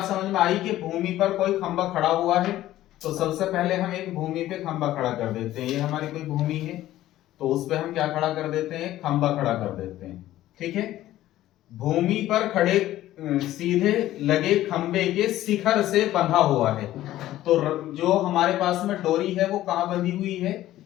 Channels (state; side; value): quieter; right; 14.3 dB